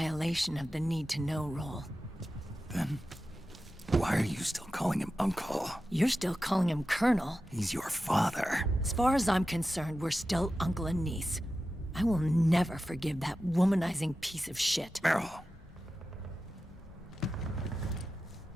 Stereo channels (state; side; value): normal; both; correlation 0.93